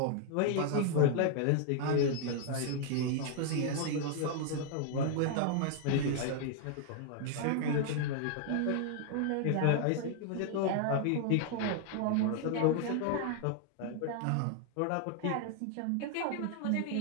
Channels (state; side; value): different; both; correlation 0.00